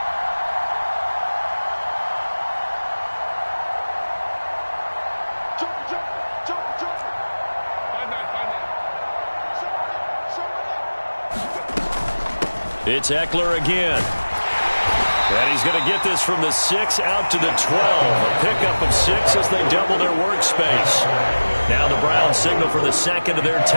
It's Eckler again. And he's going to get this from the 6 out to the 12. A pickup of 6 as they double their workspace. Now the Browns signal for the second of their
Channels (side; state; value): both; inverted; correlation -1.00